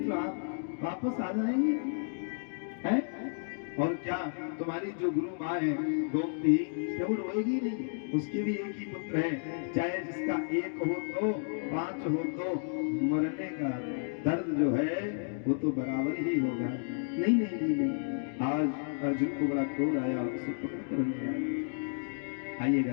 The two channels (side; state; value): right; silent; digital silence